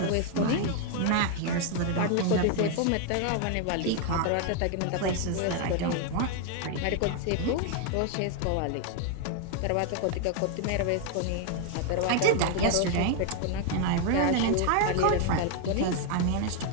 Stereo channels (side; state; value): both; different; correlation 0.01